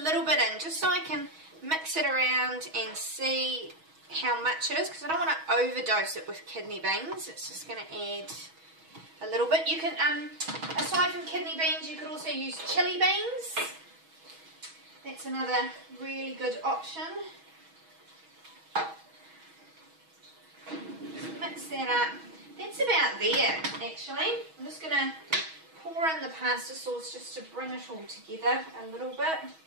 little bit in just so I can mix it around and see how much it is, because I don't want to overdose it with kidney beans. It's just going to add a little bit. You can, aside from kidney beans, you could also use chili beans. That's another really good option. Just mix that up. That's about there, actually. I'm just going to pour in the pasta sauce just to bring it all together a little bit.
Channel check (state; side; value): late; left; 6.2 ms